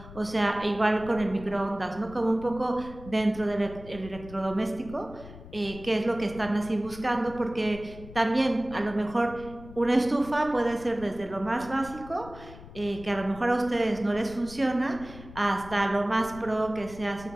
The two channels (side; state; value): left; noise; rumble, 16 dB below the sound